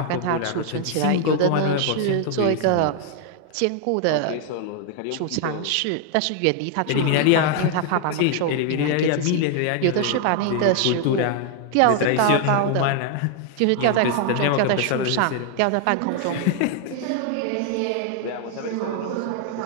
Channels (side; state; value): both; different; correlation 0.00